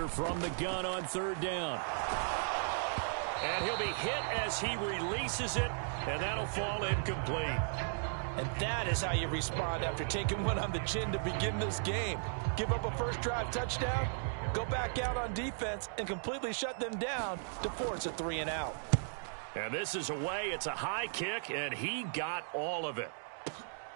from the gun on third down. And he'll be hit as he releases it, and that'll fall incomplete. And that is how you respond after taking one on the chin to begin this game. Give up a first drive touchdown, go back out on defense, and completely shut them down to force a 3-and-out. And this is away. It's a high kick, and he got all of it.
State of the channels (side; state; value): left; silent; digital silence